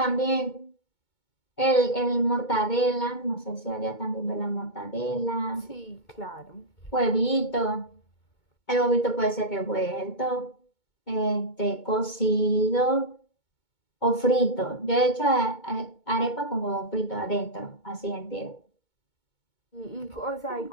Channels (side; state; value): right; late; 2.2 ms